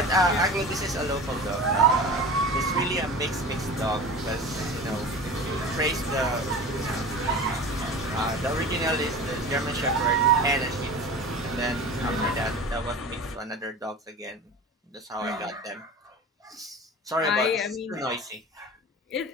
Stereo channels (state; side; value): normal; both; correlation 0.35